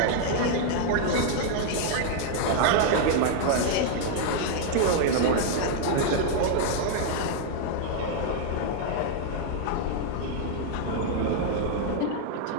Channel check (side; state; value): both; different; correlation 0.00